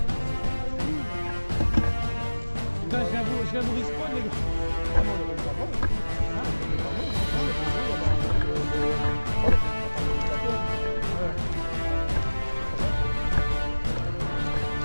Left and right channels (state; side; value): inverted; both; correlation -1.00